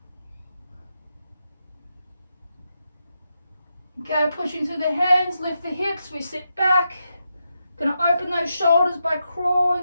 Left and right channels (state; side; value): inverted; both; correlation -0.86